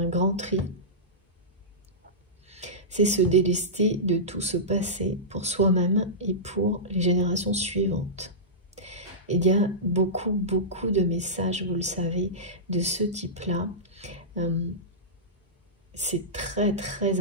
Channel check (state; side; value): normal; both; correlation -0.16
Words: grand tri. C'est se délester de tout ce passé pour soi-même et pour les générations suivantes. Il y a beaucoup de messages, vous le savez, de ce type-là. C'est très